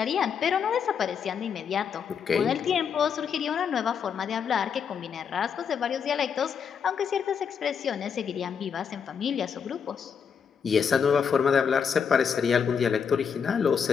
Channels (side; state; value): right; quieter; 6.9 dB